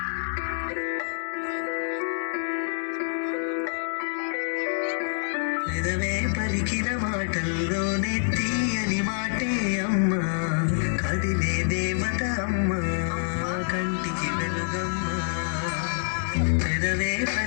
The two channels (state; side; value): silent; right; 60 dB below the other